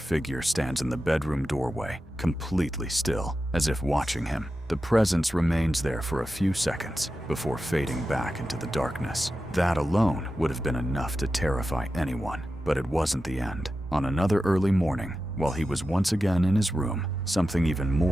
stands in the bedroom doorway, completely still, as if watching him. The presence remains there for a few seconds before fading back into the darkness. That alone would have been enough to terrify anyone, but it wasn't the end. On another early morning, while he was once again in his room, something even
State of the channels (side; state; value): both; normal; correlation 0.92